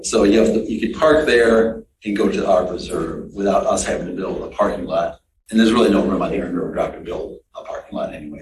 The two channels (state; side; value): identical; both; correlation 1.00